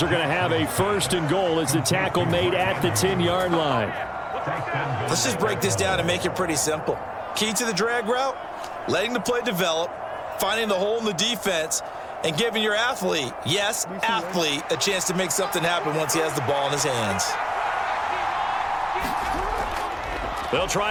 are going to have a 1st and goal as the tackle made at the 10-yard line. Let's just break this down and make it pretty simple. Key to the drag route, letting the play develop, finding the hole in the defense, and giving your athlete, yes, athlete, a chance to make something happen once he has the ball in his hands. They'll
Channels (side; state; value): both; identical; correlation 1.00